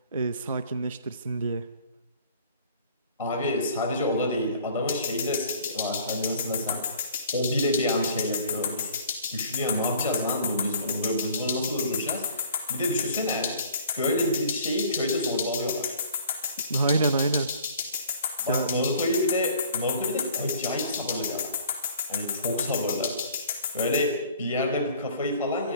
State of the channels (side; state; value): both; inverted; correlation -0.51